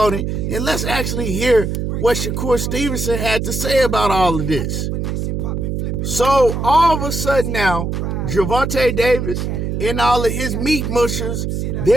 it. And let's actually hear what Shakur Stevenson had to say about all of this. So all of a sudden now, Gervonta Davis and all of his meat mushers,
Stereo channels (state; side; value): noise; right; hum, 2 dB below the sound